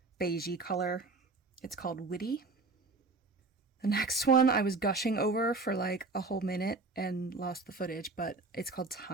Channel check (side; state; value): left; quieter; 3.6 dB